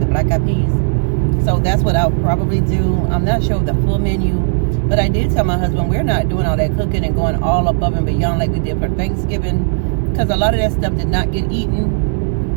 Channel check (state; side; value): silent; left; digital silence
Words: black eyed peas. So that's what I'll probably do. I'm not sure of the full menu. But I did tell my husband we're not doing all that cooking and going all above and beyond like we did for Thanksgiving. Because a lot of that stuff did not get